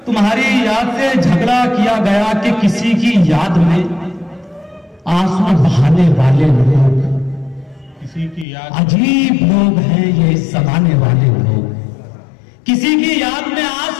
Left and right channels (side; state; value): right; drops out; at 8.5 s